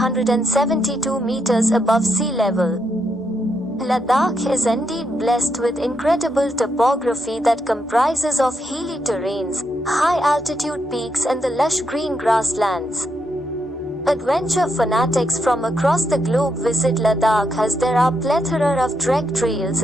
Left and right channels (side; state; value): both; normal; correlation 0.81